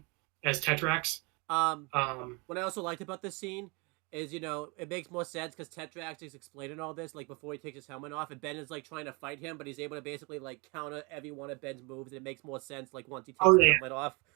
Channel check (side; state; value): left; quieter; 29.2 dB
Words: as Tetrax. Um, Um, what I also liked about this scene is, it makes more sense because Tetrax is explaining all this, like, before he takes his helmet off, and Ben is, like, trying to fight him, but he's able to basically, like, counter every one of Ben's moves, and it makes more sense, like, once he takes oh his yeah, helmet off.